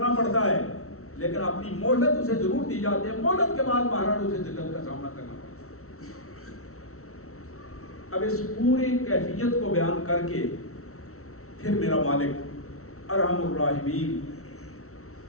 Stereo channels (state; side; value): late; right; 0.63 ms